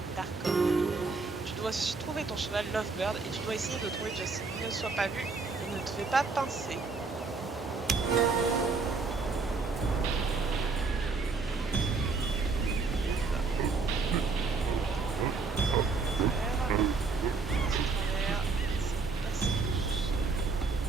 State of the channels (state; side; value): quieter; left; 4.3 dB